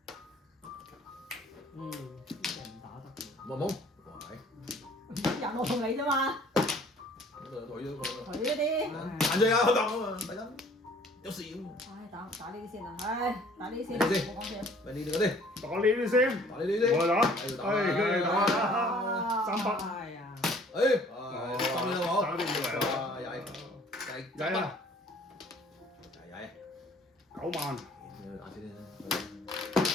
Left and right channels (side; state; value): both; normal; correlation 0.55